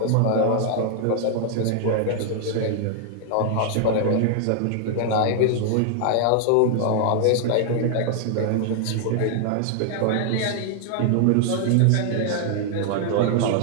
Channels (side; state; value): both; different; correlation -0.01